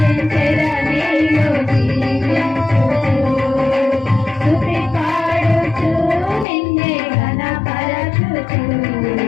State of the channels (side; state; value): right; drops out; at 6.5 s